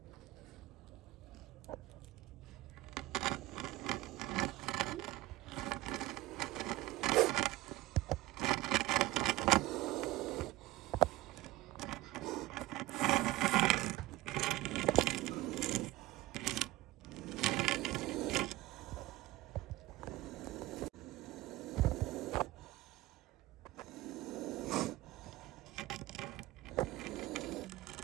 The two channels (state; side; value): quieter; left; 17.6 dB